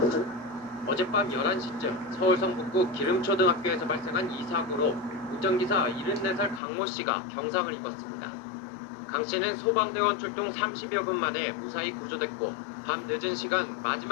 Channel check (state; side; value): drops out; right; at 6.6 s